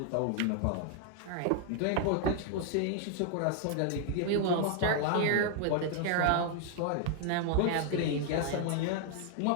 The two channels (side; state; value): both; different; correlation 0.00